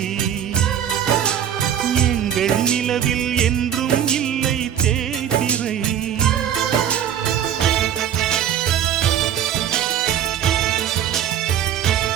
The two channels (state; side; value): quieter; left; 9.7 dB